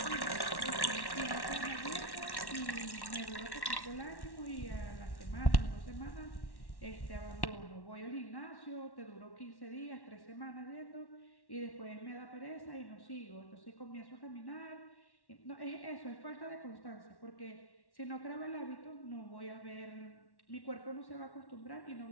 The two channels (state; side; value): late; right; 1.1 ms